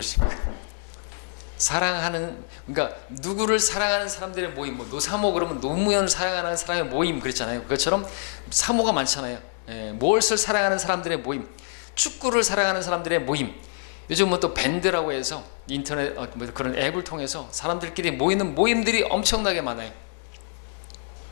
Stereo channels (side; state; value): right; silent; digital silence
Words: 사랑하는, 그러니까 누구를 사랑하는 사람들의 모임, 뭐 노사모 그러면 노무현을 사랑하는 사람의 모임 그랬잖아요. 그것처럼 사모가 많잖아요. 무엇을 사랑하는 사람들의 모임, 축구를 사랑하는 사람들의 모임. 요즘은 또 밴드라고 해서 인터넷 그런 앱을 통해서 사람들끼리 모이는 모임들이 엄청나게 많아요.